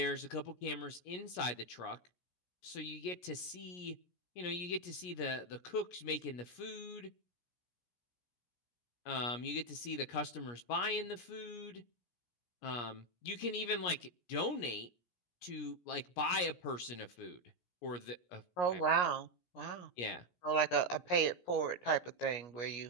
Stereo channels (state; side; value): late; right; 17 ms